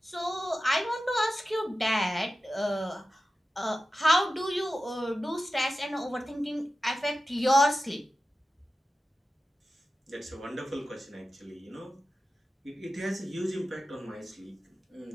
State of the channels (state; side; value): normal; both; correlation 0.93